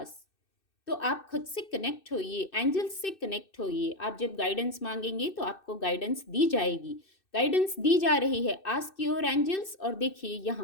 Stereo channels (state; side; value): late; right; 2.6 ms